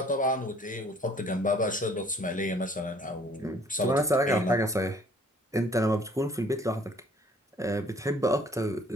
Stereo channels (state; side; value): normal; both; correlation 0.57